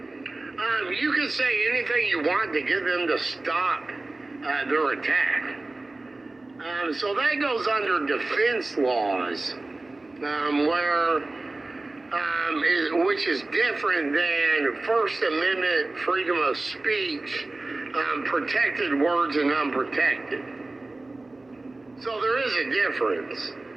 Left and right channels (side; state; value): left; quieter; 3.1 dB